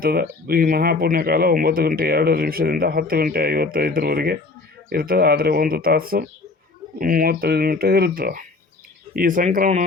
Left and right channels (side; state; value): right; quieter; 3.7 dB